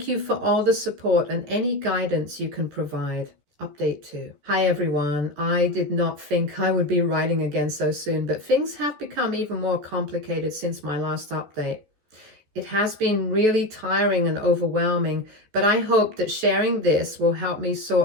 you for all the support and any guidance you can provide. Update 2. Hi everyone. I did not think I would be writing again so soon, but things have become even more complicated since my last update. It has been really tiring and overwhelming, but I hope that sharing this will help me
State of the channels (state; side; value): late; left; 14 ms